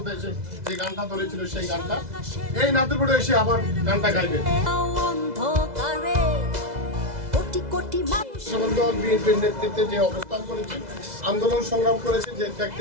এসে যে গানটা ধরেছিল সেই গানটা এই নাতিরপুরে এসে আবার গানটা গাইবে। দল বিএনপির নেতৃত্বে যে অবস্থান করেছে, আন্দোলন সংগ্রাম করেছে, যে ব্যক্তি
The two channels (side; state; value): left; late; 2.0 ms